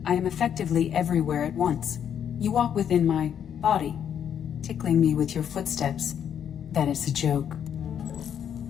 I am effectively everywhere at once. You walk within my body, tickling me with your footsteps. That is a joke.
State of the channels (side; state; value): right; quieter; 8.8 dB